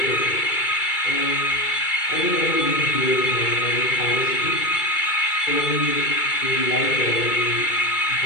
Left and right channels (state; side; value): late; right; 2.3 ms